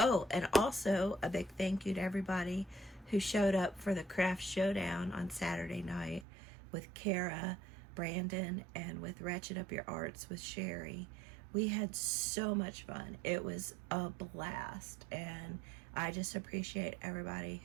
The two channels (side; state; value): left; drops out; at 6.2 s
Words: and also a big thank you to everybody who showed up for the craft showdown on Saturday night with Kara, Brandon, and with Ratchet Up Your Arts with Sherry. We had so much fun. It was a blast, and I just appreciate everybody